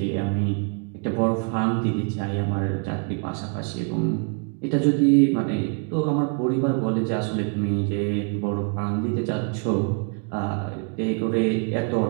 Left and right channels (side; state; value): left; quieter; 39.7 dB